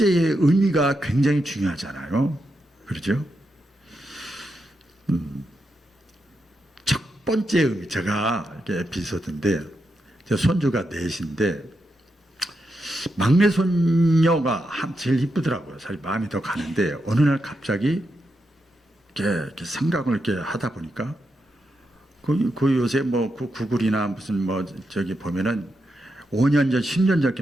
의미가 굉장히 중요하잖아요. 그렇죠? 첫 번째 의미, 제가 이게 에피소드인데, 제 손주가 넷인데 막내 손녀가 제일 이쁘더라고요. 사실 마음이 더 가는데 어느 날 갑자기 이렇게 생각을 이렇게 하다 보니까 그 요새 뭐 구글이나 무슨 뭐 저기 보면은 5년 전, 10년 전 이렇게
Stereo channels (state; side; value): normal; both; correlation 0.85